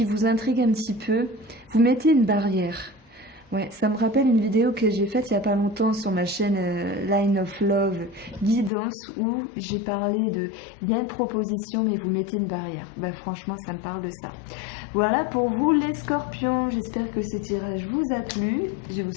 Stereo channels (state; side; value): drops out; right; at 8.7 s